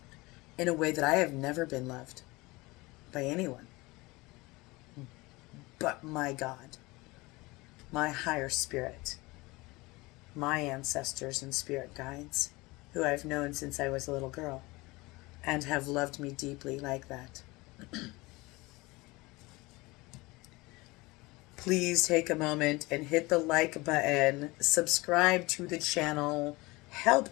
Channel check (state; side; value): quieter; right; 22.7 dB